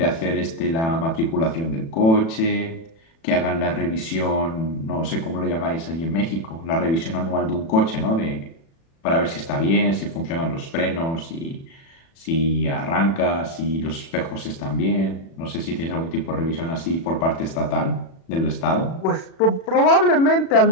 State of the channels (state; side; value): late; right; 36 ms